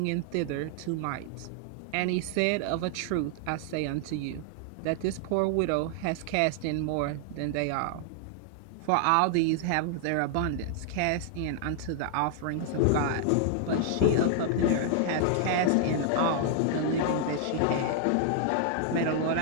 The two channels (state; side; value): different; both; correlation 0.00